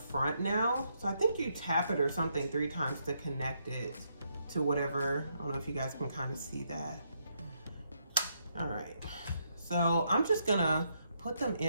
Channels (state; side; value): inverted; both; correlation -0.77